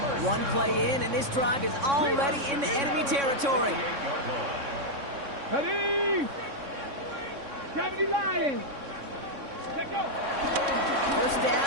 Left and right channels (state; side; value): late; left; 3.6 ms